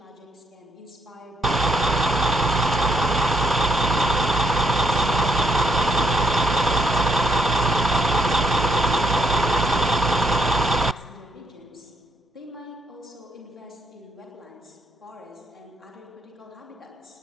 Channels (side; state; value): both; normal; correlation 0.74